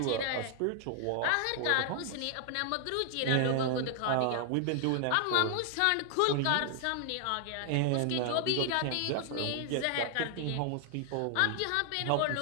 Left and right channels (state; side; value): different; both; correlation 0.00